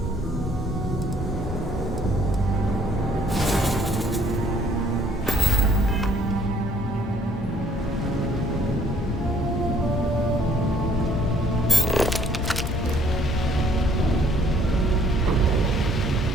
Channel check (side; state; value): both; normal; correlation 0.62